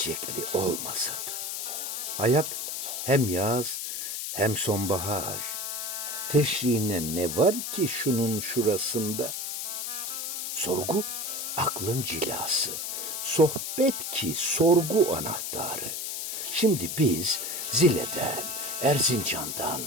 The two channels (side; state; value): left; noise; hiss, 4 dB below the sound